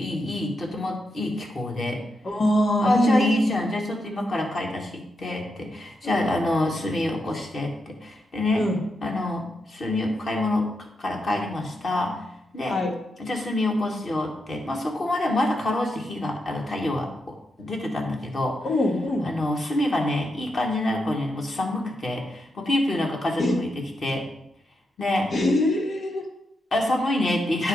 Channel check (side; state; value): both; normal; correlation 0.84